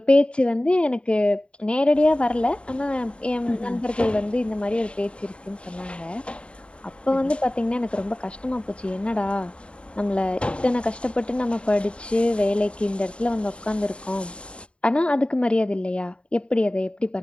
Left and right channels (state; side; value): late; right; 0.057 ms